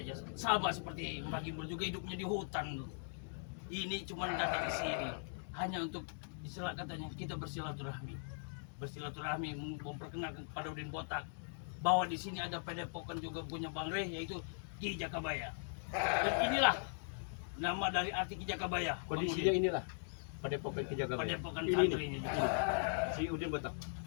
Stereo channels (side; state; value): right; silent; digital silence